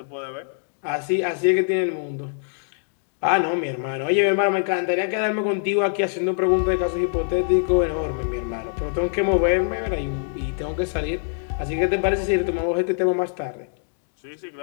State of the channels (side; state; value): right; silent; digital silence